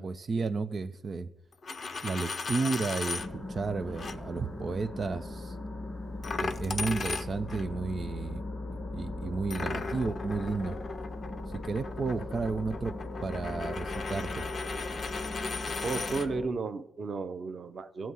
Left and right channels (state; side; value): normal; both; correlation 0.86